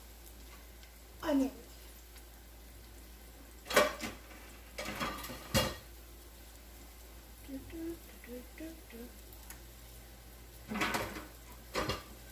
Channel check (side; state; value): both; identical; correlation 1.00